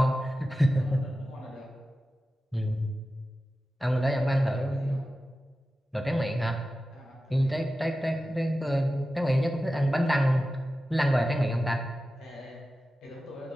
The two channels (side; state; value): both; normal; correlation 0.94